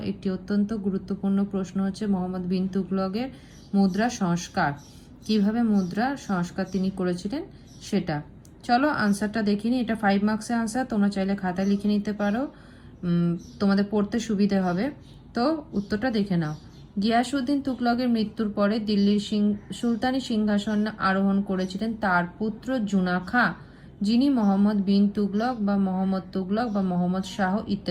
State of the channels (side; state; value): both; identical; correlation 1.00